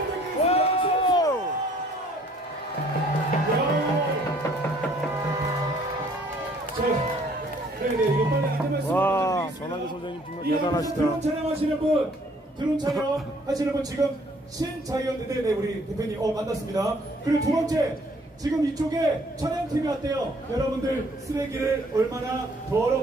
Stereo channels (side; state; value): both; normal; correlation 0.60